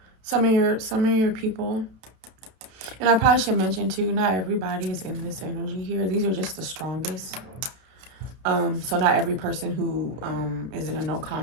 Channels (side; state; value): left; late; 31 ms